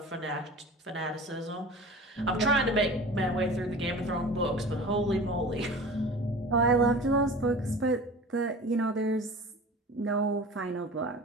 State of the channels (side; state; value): both; normal; correlation 0.38